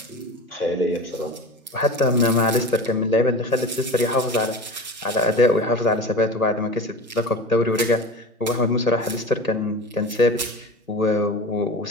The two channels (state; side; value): normal; both; correlation 0.32